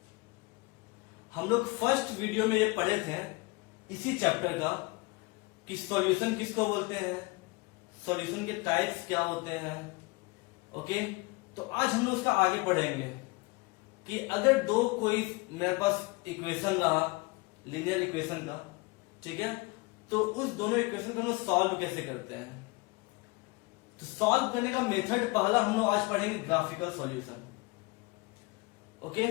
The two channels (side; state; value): right; quieter; 25.5 dB